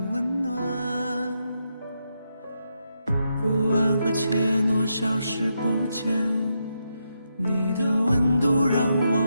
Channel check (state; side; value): inverted; both; correlation -0.83